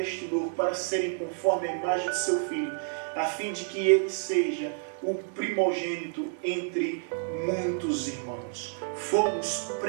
para serem conforme a imagem de seu Filho, a fim de que ele seja o primogênito entre muitos irmãos. Fomos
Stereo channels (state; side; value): silent; left; digital silence